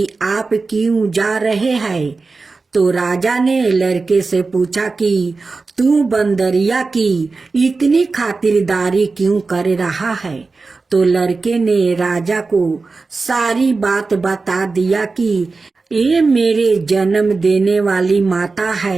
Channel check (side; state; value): left; quieter; 4.0 dB